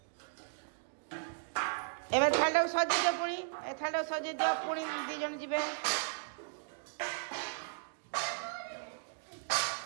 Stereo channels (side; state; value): left; silent; digital silence